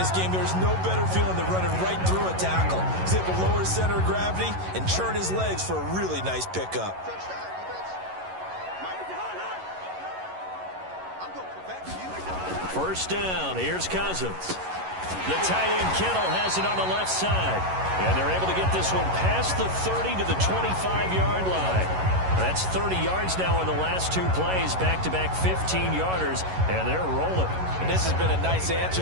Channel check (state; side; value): late; left; 11 ms